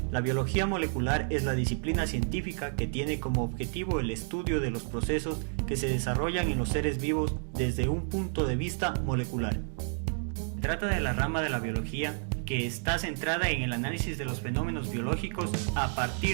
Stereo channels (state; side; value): silent; left; 58 dB below the other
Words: La biología molecular es la disciplina científica que tiene como objetivo el estudio de los procesos que se desarrollan en los seres vivos desde un punto de vista molecular. Se trata de la rama de la biología que está centrada en el análisis de los fenómenos biológicos a